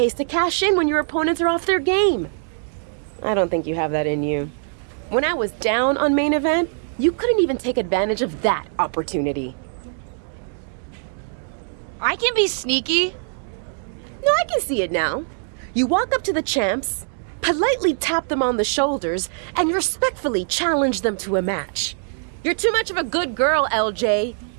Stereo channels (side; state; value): left; silent; digital silence